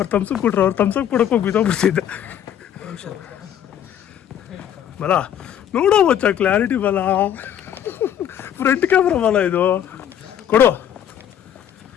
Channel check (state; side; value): quieter; right; 9.9 dB